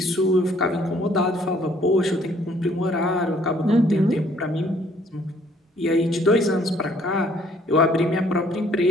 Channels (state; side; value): normal; both; correlation 0.62